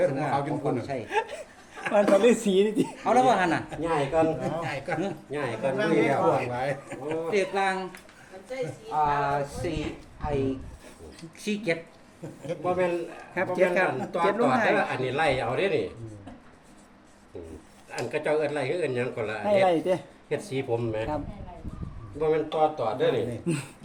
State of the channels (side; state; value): both; identical; correlation 1.00